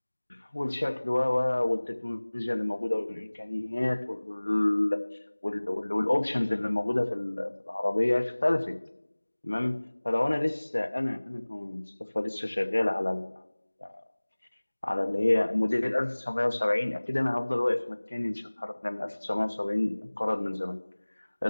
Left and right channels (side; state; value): both; inverted; correlation -1.00